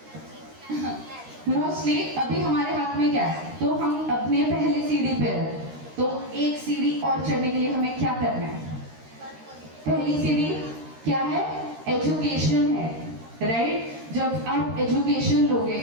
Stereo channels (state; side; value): late; left; 13 ms